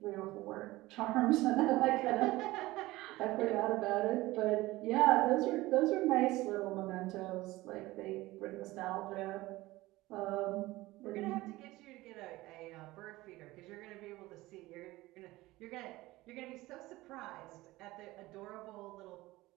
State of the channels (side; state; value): left; quieter; 18.8 dB